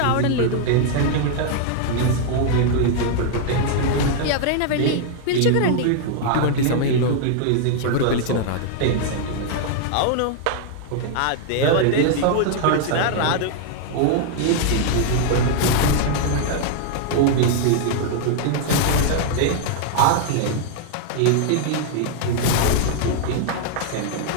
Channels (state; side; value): different; both; correlation -0.01